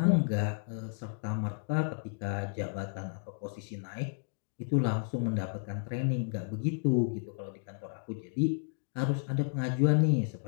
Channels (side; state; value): right; silent; digital silence